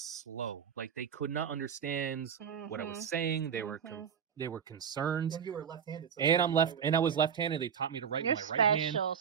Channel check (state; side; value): quieter; left; 7.7 dB